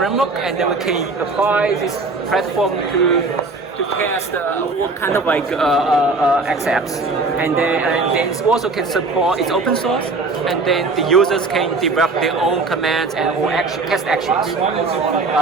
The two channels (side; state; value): left; quieter; 3.7 dB